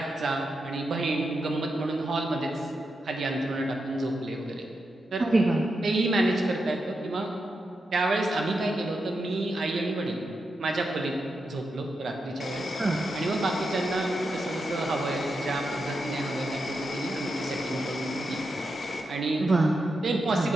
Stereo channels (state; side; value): normal; both; correlation 0.86